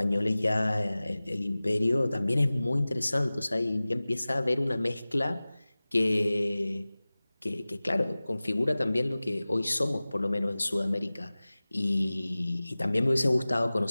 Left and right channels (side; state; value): both; inverted; correlation -0.98